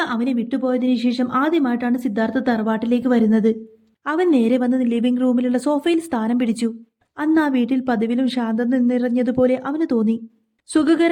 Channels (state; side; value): identical; both; correlation 1.00